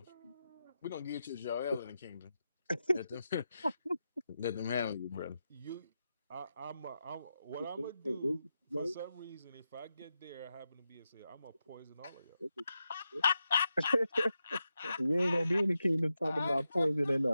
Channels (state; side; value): inverted; both; correlation -0.88